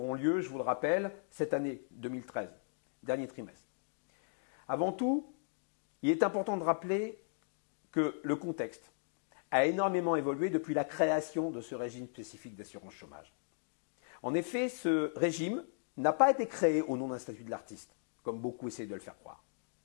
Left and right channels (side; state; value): right; silent; digital silence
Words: lieu, je vous le rappelle, cette année 2013, dernier trimestre. Avant tout, il est important de rappeler que le contexte a énormément évolué depuis la création de ce régime spécifique d'assurance chômage. En effet, ce régime n'a pas été créé au nom d'un statut de l'artiste, comme beaucoup essayent de le faire croire.